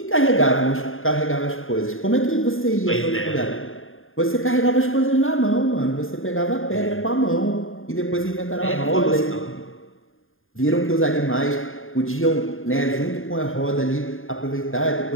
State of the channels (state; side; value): late; right; 0.59 ms